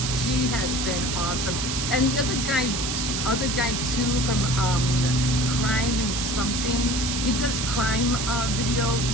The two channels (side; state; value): right; noise; hiss, 2 dB below the sound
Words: She has been awesome. And the other guy too from Crime and Something. He does crime videos